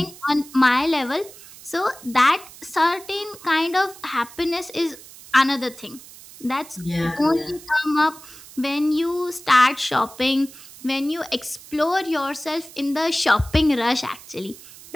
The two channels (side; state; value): right; noise; hiss, 19 dB below the sound